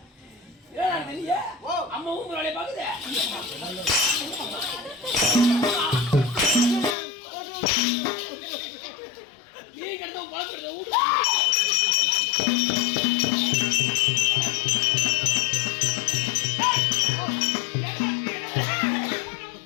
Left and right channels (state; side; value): drops out; right; at 7.0 s